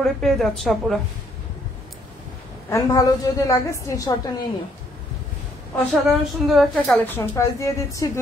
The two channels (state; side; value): normal; both; correlation 0.68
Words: পেয়ে যাচ্ছে আপুরা। এন্ড ভালো যদি লাগে স্ক্রিনশটটা নিয়ে নিও। অসাধারণ সুন্দর একটা কালেকশন। প্রাইস দিয়ে দিচ্ছি